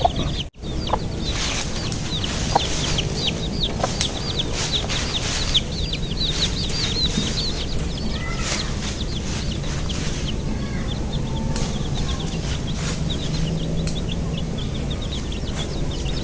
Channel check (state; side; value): identical; both; correlation 1.00